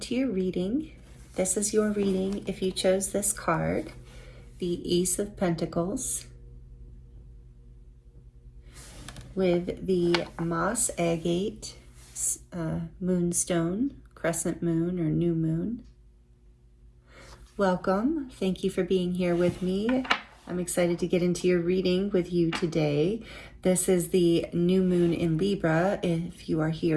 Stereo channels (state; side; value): identical; both; correlation 1.00